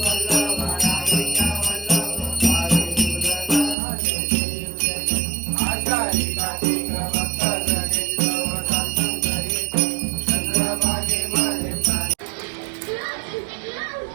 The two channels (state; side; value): drops out; left; at 3.8 s